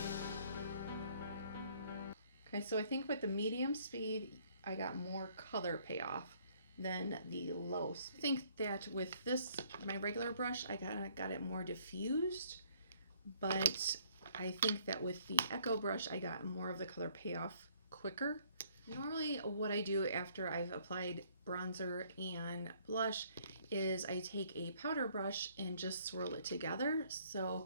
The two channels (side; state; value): both; inverted; correlation -0.63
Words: Okay, so I think with the medium speed, I got more color payoff than the low speed. I think that with this, my regular brush, I got it more diffused, but I think that with the Echo brush, I got more of the color payoff quicker. Normally what I do after I've applied bronzer and blush is I take a powder brush and just swirl it together.